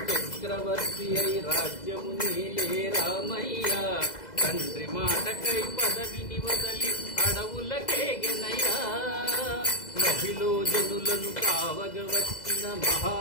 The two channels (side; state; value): right; late; 2.0 ms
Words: చక్రవర్తి అయి రాజ్యము నీలే రామయ్య తండ్రి మాటకై పదవిని వదలి అడవులకేగెనయ్యా నభిలో జనులను కావగ వచ్చిన